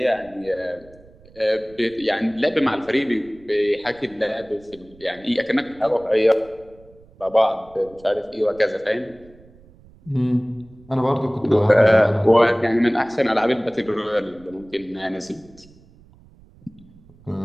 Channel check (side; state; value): right; noise; rumble, 26 dB below the sound